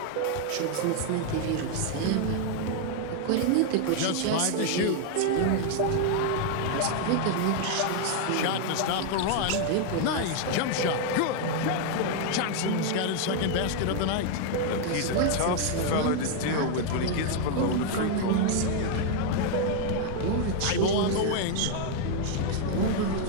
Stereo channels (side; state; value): both; different; correlation 0.00